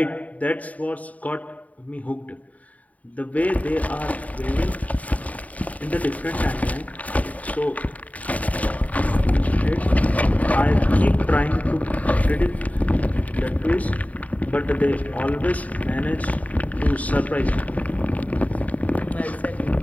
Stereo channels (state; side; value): late; right; 0.071 ms